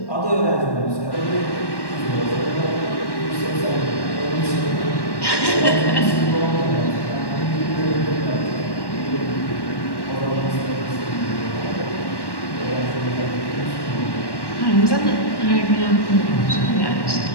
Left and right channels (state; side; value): late; right; 1.1 ms